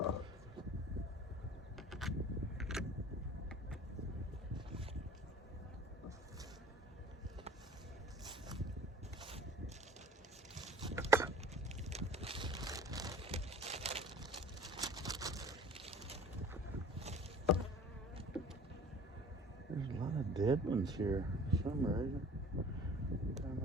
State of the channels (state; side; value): normal; both; correlation 0.44